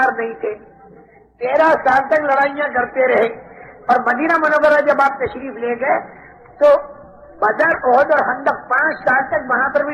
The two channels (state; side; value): identical; both; correlation 1.00